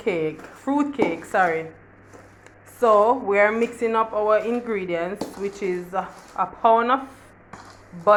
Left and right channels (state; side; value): identical; both; correlation 1.00